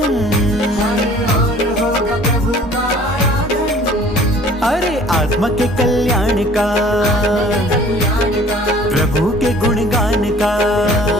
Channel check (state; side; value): normal; both; correlation 0.51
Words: अरे आत्मा के कल्याण का, प्रभु के गुणगान का।